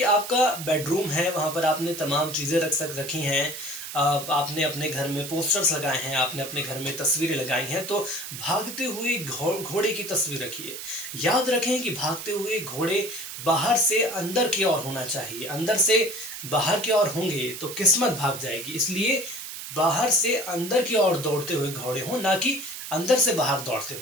आपका बेडरूम है, वहां पर आपने तमाम चीजें रखी हैं, आपने अपने घर में पोस्टर्स लगाए हैं, आपने अपने घर में तस्वीरें लगाई हैं, तो भागते हुए घोड़े की तस्वीर रखिए। याद रखें कि भागते हुए घोड़े बाहर से अंदर की ओर होना चाहिए। अंदर से बाहर की ओर होंगे तो किस्मत भाग जाएगी। इसलिए बाहर से अंदर की ओर दौड़ते हुए घोड़े हों, ना कि अंदर से बाहर दौड़ते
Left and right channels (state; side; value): noise; right; hiss, 9 dB below the sound